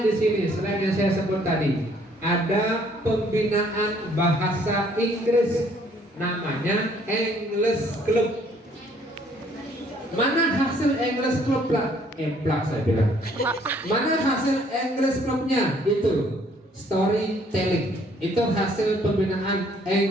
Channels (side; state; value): both; normal; correlation 0.62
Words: di sini selain yang saya sebut tadi? Ada pembinaan bahasa Inggris, namanya English Club. Mana hasil English Club lah? Saya bilang. Mana hasil English Clubnya? Itu storytelling. Itu hasil pembinaan